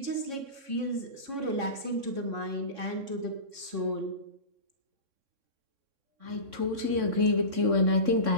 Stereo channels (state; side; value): late; left; 3.6 ms